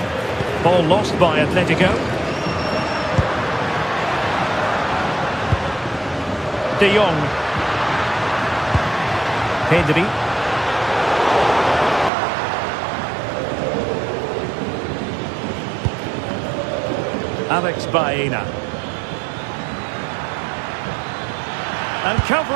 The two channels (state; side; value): drops out; left; at 12.1 s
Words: Ball lost by Atletico. De Jong. Pedri. Alex Baena. And